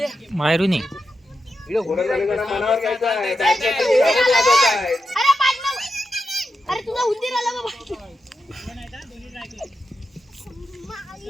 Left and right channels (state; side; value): normal; both; correlation 0.88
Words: मायरूनी गोलंदाजांना मनावर घ्यायचं आहे, बॅटमॅनची धावत वाजवत आहेत. अरे तुला उंदीर आला बाबा.